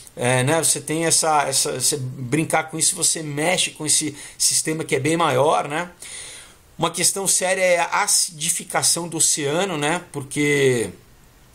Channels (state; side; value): identical; both; correlation 1.00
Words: você tem você brincar com isso, você mexe com esse sistema que é bem maior, né? Uma questão séria é a acidificação do oceano, né? Porque